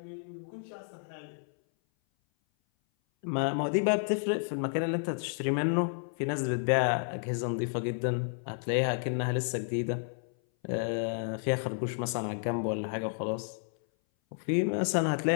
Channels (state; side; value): silent; right; 57 dB below the other